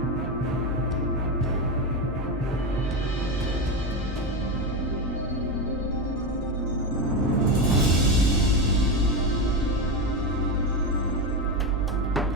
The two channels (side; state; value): both; normal; correlation 0.14